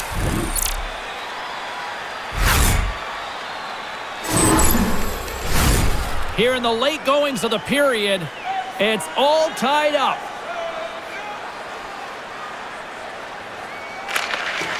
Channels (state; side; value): identical; both; correlation 1.00